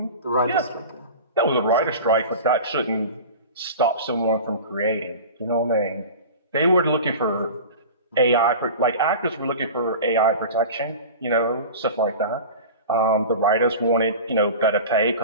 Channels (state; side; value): inverted; both; correlation -0.34